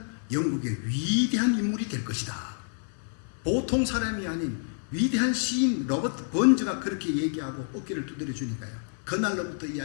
영국의 위대한 인물이 될 것이다. 보통 사람이 아닌 위대한 시인 로버트 번즈가 그렇게 얘기하고 어깨를 두드려 주니까요, 그날로부터 이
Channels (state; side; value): silent; right; 56 dB below the other